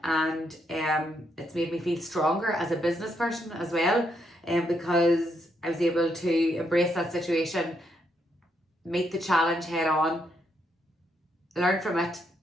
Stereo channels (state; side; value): normal; both; correlation 0.77